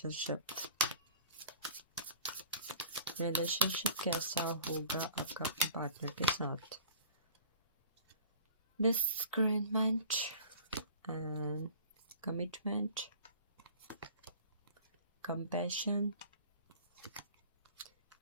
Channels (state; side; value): inverted; both; correlation -0.45